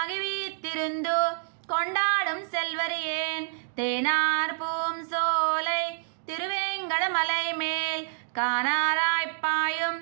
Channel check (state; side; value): silent; left; digital silence